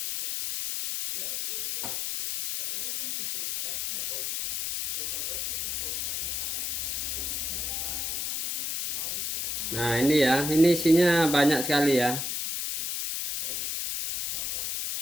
Nah ini ya, ini isinya banyak sekali ya.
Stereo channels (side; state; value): left; noise; hiss, 2 dB below the sound